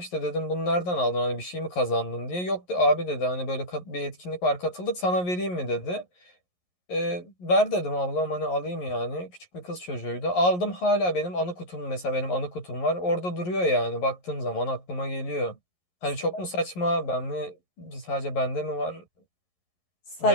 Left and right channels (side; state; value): right; late; 11 ms